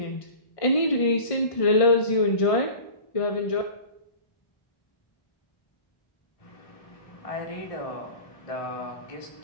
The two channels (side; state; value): right; late; 1.5 ms